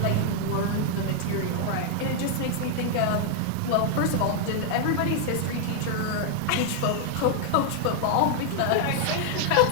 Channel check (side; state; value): both; different; correlation 0.00